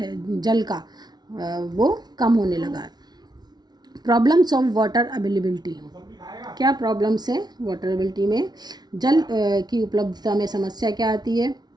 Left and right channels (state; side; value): late; left; 0.19 ms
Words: जल का वो कम होने लगा है। प्रॉब्लम्स ऑफ वाटर अवेलेबिलिटी, क्या प्रॉब्लम्स है वाटर अवेलेबिलिटी में, जल की उपलब्धता में समस्या क्या आती है